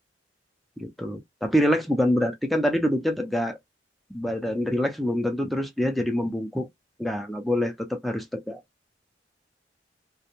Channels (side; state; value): both; normal; correlation 0.87